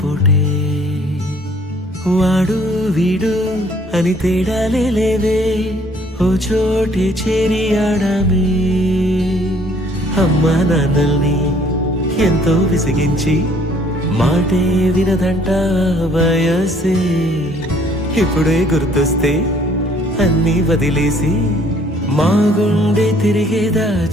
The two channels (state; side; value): normal; both; correlation 0.60